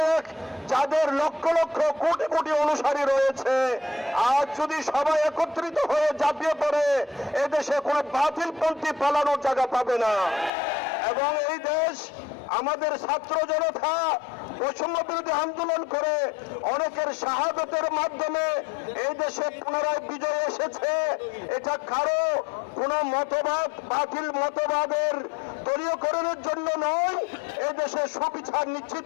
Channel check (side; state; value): right; drops out; at 10.5 s